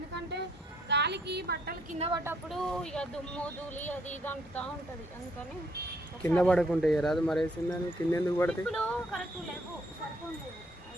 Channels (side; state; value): both; normal; correlation 0.69